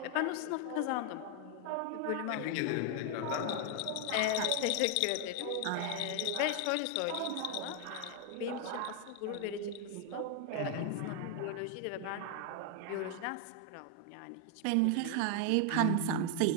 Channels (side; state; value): both; different; correlation 0.00